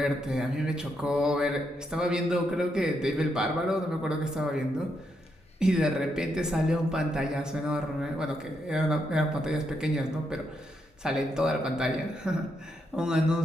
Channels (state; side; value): normal; both; correlation 0.80